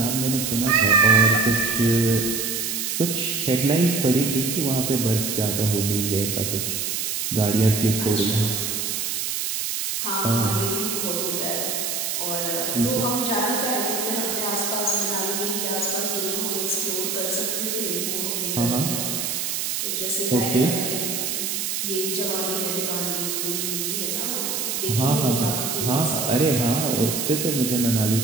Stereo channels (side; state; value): right; noise; hiss, 1 dB below the sound